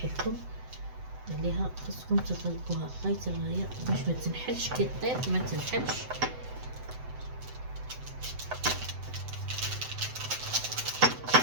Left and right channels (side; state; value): left; late; 7.9 ms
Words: لكم عليها. خصكم تغلقوها غايه الغايه باش ما تنحلش، كي طيب ما تنحلش.